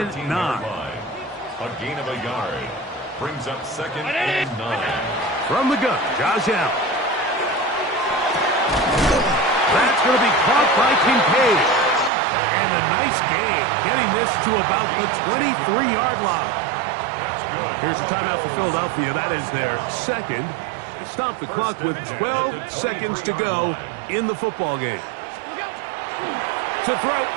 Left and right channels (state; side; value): drops out; left; at 12.1 s